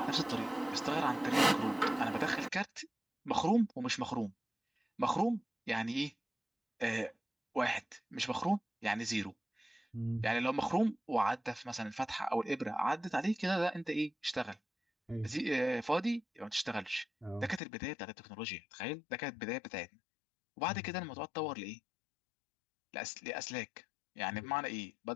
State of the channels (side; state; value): right; drops out; at 17.6 s